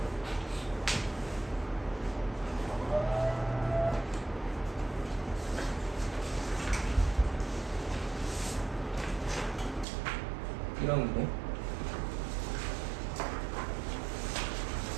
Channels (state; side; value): drops out; left; at 9.9 s